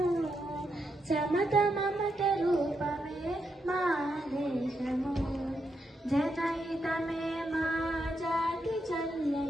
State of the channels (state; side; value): normal; both; correlation 0.82